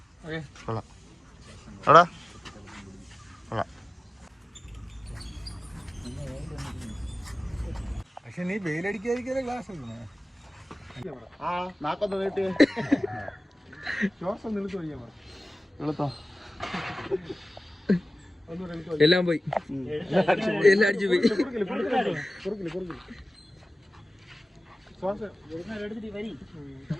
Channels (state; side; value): normal; both; correlation 0.97